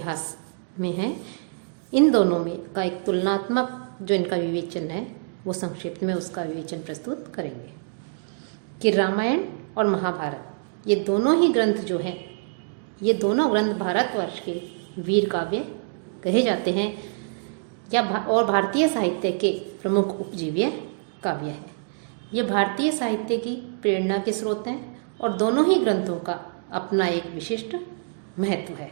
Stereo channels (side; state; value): left; silent; digital silence